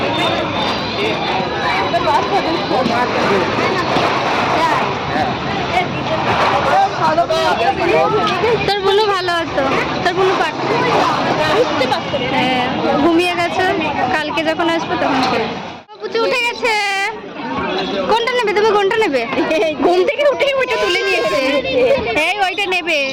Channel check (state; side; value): identical; both; correlation 1.00